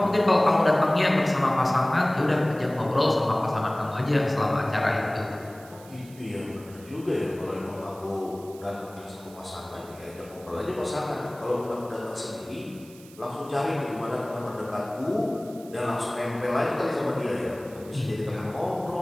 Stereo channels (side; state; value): right; noise; hiss, 22 dB below the sound